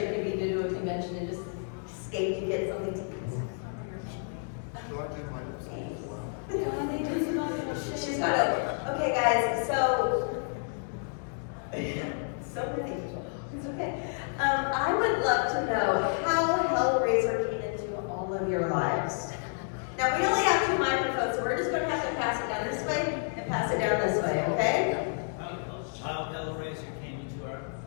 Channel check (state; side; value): silent; right; 58 dB below the other